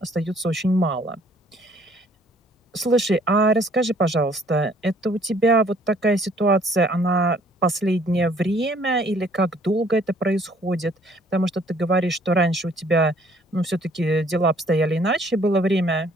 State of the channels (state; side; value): normal; both; correlation 0.60